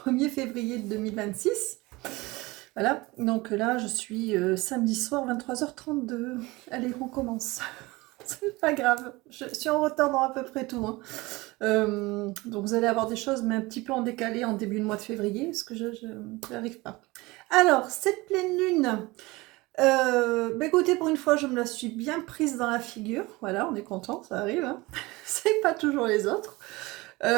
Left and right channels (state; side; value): quieter; left; 22.1 dB